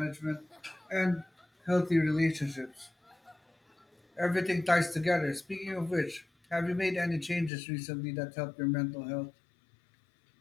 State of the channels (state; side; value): drops out; right; at 7.5 s